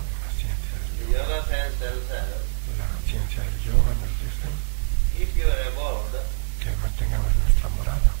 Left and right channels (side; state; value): left; silent; 62 dB below the other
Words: la ciencia del The yoga. yoga science tells us, La ciencia del yoga nos dice keep your abode que mantengamos nuestra morada